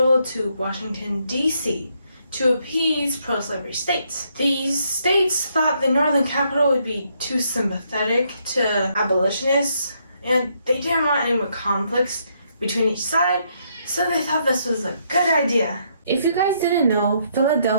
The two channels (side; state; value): both; inverted; correlation -0.74